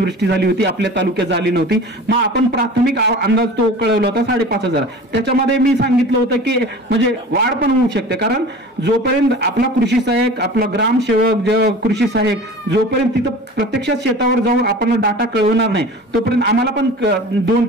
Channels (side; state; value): both; normal; correlation 0.39